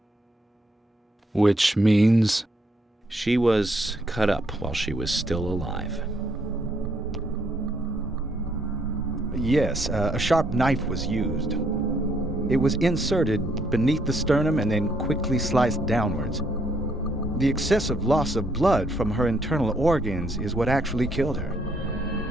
Which means... She was cut up while she was still alive. Yes, a sharp knife was used. It was inserted beneath the sternum and then quickly sliced downwards. The excessive loss of blood from her internal organs is what actually killed her.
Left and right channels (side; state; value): both; normal; correlation 0.71